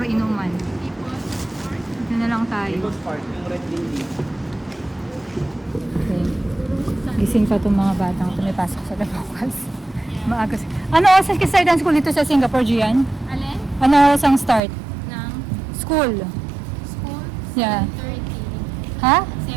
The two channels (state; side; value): drops out; left; at 14.6 s